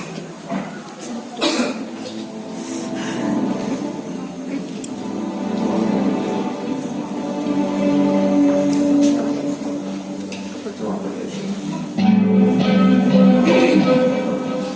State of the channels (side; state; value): both; identical; correlation 1.00